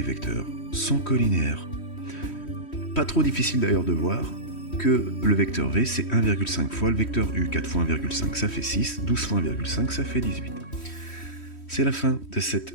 vecteurs sont collinéaires. Pas trop difficile d'ailleurs de voir que le vecteur v, c'est 1,5 fois le vecteur u. 4 fois 1,5, ça fait 6, 12 fois 1,5, ça fait 18. C'est la fin de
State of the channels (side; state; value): right; late; 3.1 ms